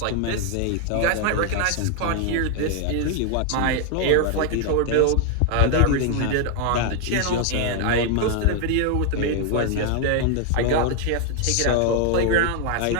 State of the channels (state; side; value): different; both; correlation 0.00